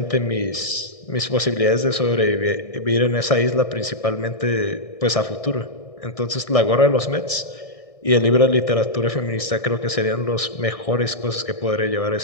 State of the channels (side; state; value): right; late; 1.6 ms